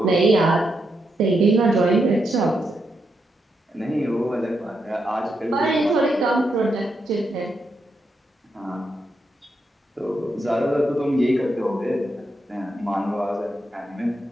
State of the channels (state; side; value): normal; both; correlation 0.83